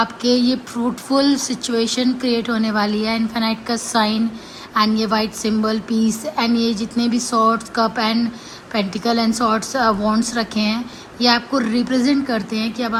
ये फ्रूटफुल सिचुएशन क्रिएट होने वाली है। इन्फिनाइट का साइन एंड ये वाइट सिंबल पीस, एंड ये जितने भी swords, cup and pentacle and swords wands रखे हैं, ये आपको रिप्रेजेंट करते हैं कि अब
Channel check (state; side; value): identical; both; correlation 1.00